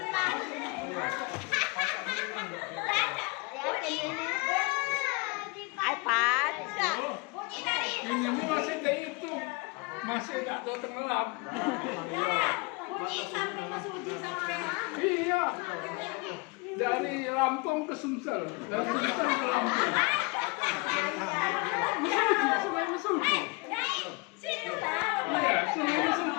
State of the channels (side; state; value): right; quieter; 27.6 dB